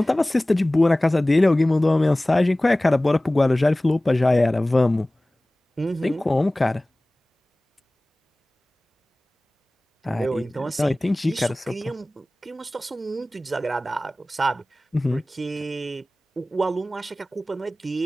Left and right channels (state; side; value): normal; both; correlation 0.98